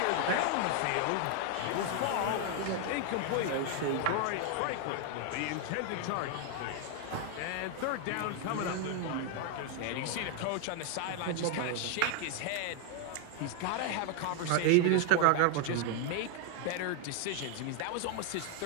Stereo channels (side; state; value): both; different; correlation 0.00